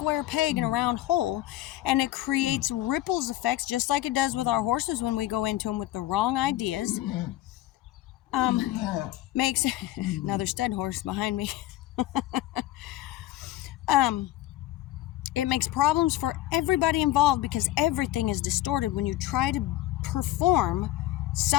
peg in a round hole, and it creates ripples effects, just like it does with our horses when we go into them with the wrong ideas. Makes another stud horse behind me. It makes problems for everybody involved, because everything is distorted when you try to perform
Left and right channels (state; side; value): quieter; right; 15.3 dB